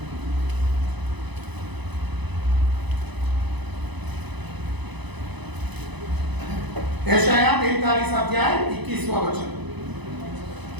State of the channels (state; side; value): late; left; 1.0 ms